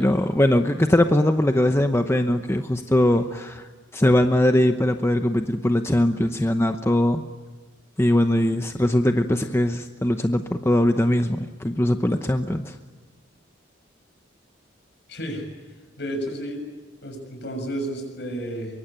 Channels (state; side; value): normal; both; correlation 0.90